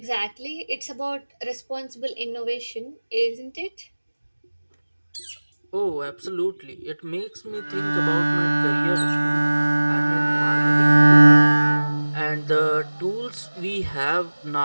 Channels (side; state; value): both; inverted; correlation -1.00